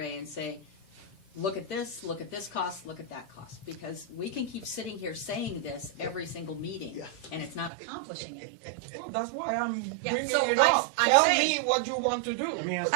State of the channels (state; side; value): drops out; left; at 7.7 s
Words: and say, look at this cost, look at that cost. Because we can keep sitting here saying this every single meeting, and it's not accomplishing anything. Well, that's why I'm Yeah, bringing so it I'm up. saying- Tell me what you want to do. Let me ask